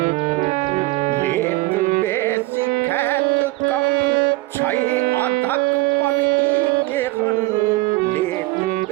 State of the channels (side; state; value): left; quieter; 20.8 dB